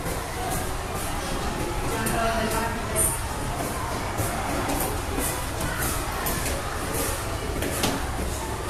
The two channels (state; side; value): identical; both; correlation 1.00